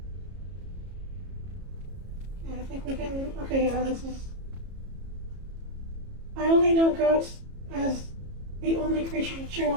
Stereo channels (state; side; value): late; left; 33 ms